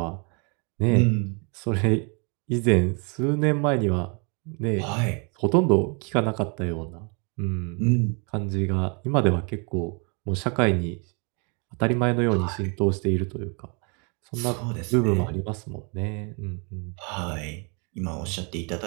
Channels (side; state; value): left; quieter; 34.7 dB